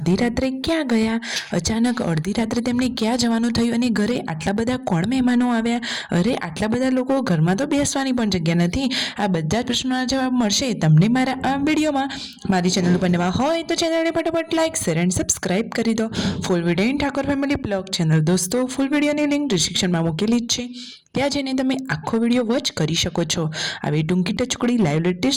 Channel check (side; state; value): both; identical; correlation 1.00